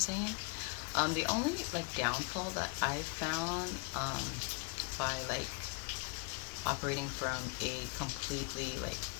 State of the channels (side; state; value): right; quieter; 34.3 dB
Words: The only like downfall that I've found by like operating from a completely like